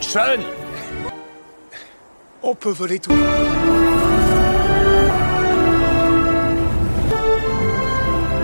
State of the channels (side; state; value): both; inverted; correlation -1.00